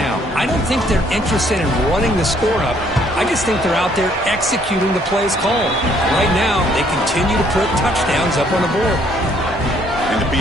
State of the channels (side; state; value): both; normal; correlation 0.65